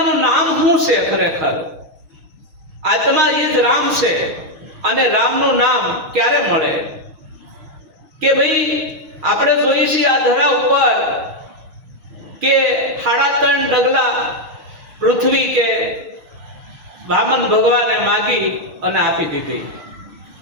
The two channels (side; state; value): left; late; 6.4 ms